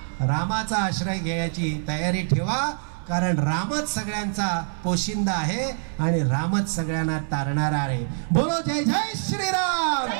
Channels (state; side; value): silent; left; digital silence